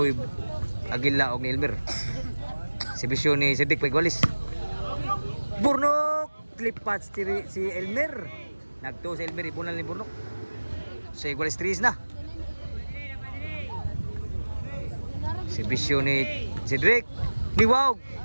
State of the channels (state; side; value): inverted; both; correlation -1.00